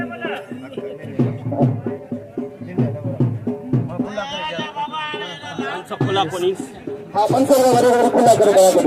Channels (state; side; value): identical; both; correlation 1.00